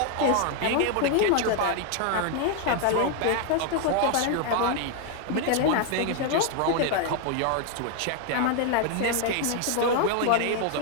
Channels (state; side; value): different; both; correlation 0.01